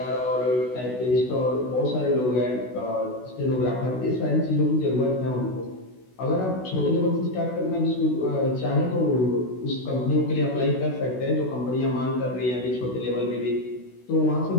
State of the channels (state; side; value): late; right; 16 ms